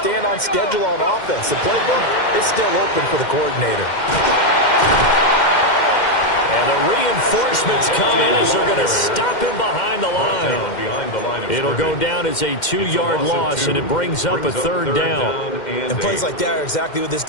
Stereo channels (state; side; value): late; right; 2.1 ms